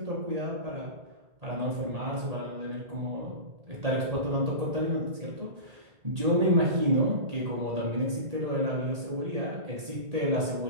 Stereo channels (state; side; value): late; left; 1.8 ms